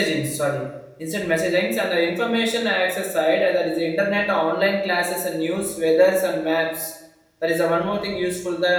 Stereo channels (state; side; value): identical; both; correlation 1.00